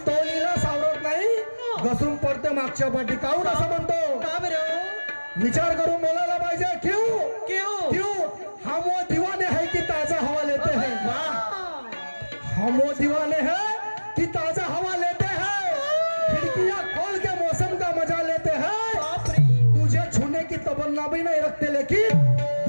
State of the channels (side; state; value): both; inverted; correlation -1.00